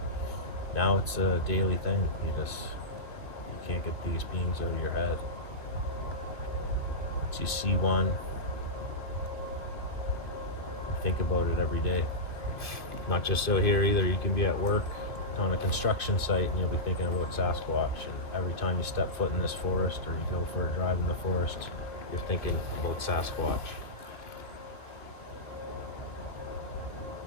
Now it's a daily thing. You can't get these beings out of your head. Once you see one, think about it every day. Not just out here either. You can be at work on a construction site and you'll be thinking about Sasquatch, and every time you step foot in this forest or you go for a drive in the forest, you're thinking about Sasquatch.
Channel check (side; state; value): right; late; 2.3 ms